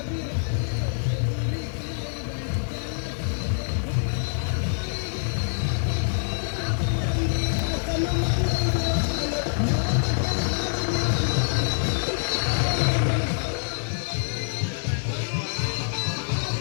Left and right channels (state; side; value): silent; right; digital silence